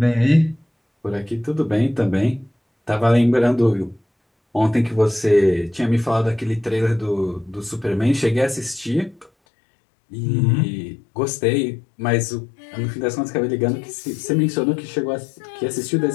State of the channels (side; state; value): right; drops out; at 9.3 s